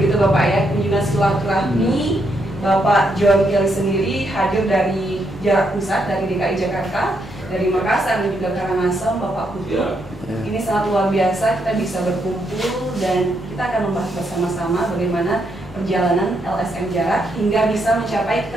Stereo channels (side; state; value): both; normal; correlation 0.78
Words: Bapak ya, kunjungan silaturahmi. Bapak John Kelly sendiri hadir dari jarak pusat, dari DKI Jakarta, dari Makassar dan juga Karangasem, Bapak Putu. Ini sangat luar biasa, kita bisa berkumpul dan kita akan membahas bersama-sama bagaimana perjalanan LSM Jarak hingga bisa mencapai